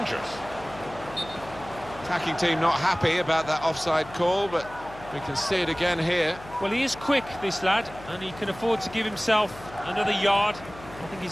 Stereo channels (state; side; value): noise; left; hum, 17 dB below the sound